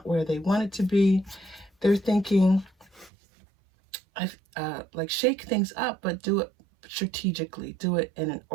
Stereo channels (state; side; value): drops out; left; at 3.1 s